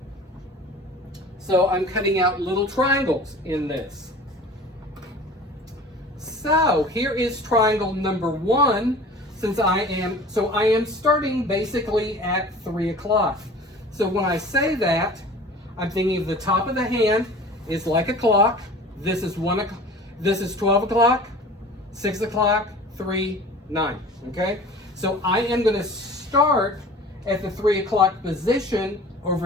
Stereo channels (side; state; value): both; normal; correlation 0.42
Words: So I'm cutting out little triangles in this. So here is triangle number 1. I am starting basically at 3 o'clock. So when I say that, I'm thinking of the top of the hand is like a clock. This is 1 o'clock. This is 12 o'clock, 6 o'clock, 3, 9. Okay? So I am going to start at the 3 o'clock position